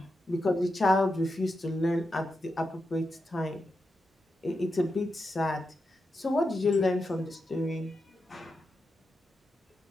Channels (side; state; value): both; normal; correlation 0.88